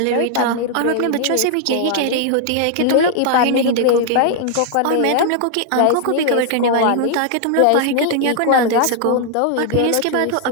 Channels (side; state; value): both; different; correlation -0.01